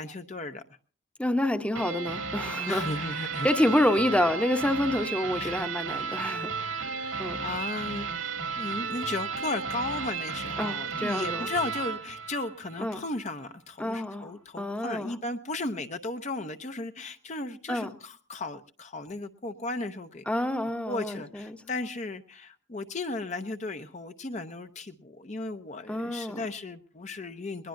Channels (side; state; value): both; normal; correlation 0.61